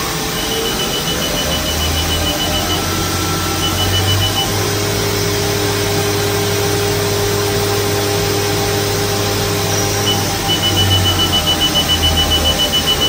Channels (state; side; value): identical; both; correlation 1.00